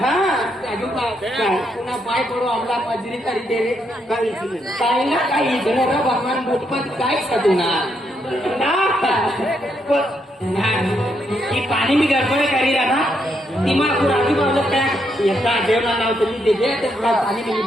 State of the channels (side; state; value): both; normal; correlation 0.78